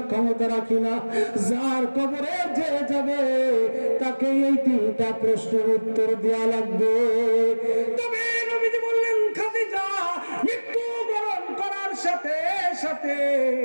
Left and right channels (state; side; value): inverted; both; correlation -1.00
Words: ক্ষমতা রাখি না। যার কবরে যে যাবে তাকে এই তিনটা প্রশ্নের উত্তর দেওয়া লাগবে। তবে নবীজি বললেন, খাদিজা, মৃত্যুবরণ করার সাথে সাথে